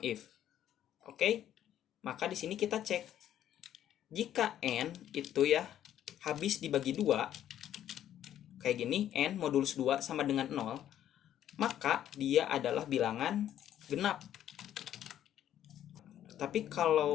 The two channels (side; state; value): right; quieter; 11.2 dB